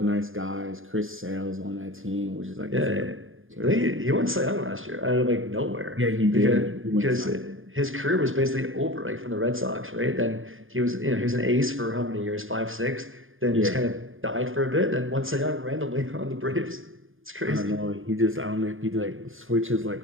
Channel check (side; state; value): left; late; 0.59 ms